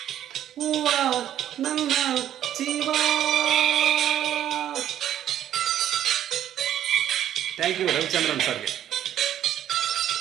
ಹೂವ ನನ್ನ ಜೀವ. ಥ್ಯಾಂಕ್ ಯು ರವಿಚಂದ್ರನ್ ಸರ್ಗೆ,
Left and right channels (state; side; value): quieter; left; 11.2 dB